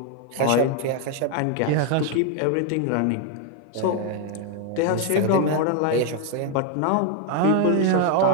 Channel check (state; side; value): different; both; correlation 0.01